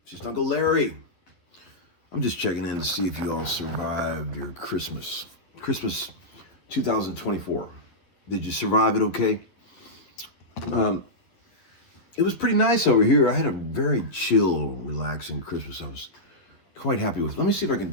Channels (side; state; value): right; late; 11 ms